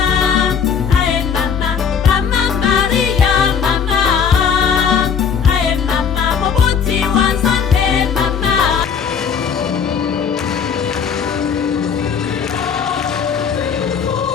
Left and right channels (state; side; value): quieter; right; 7.0 dB